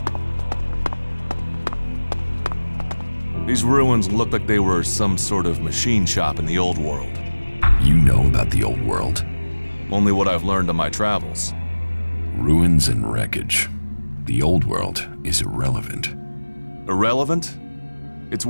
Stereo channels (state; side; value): inverted; both; correlation -1.00